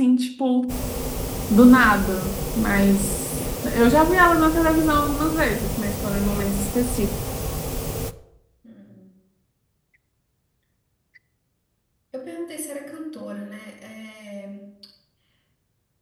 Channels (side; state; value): both; identical; correlation 1.00